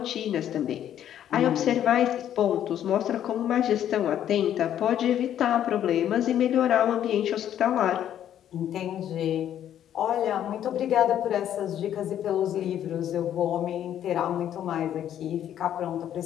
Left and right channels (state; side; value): quieter; right; 10.6 dB